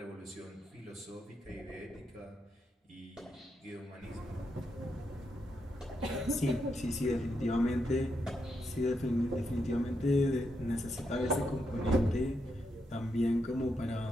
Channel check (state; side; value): normal; both; correlation 0.82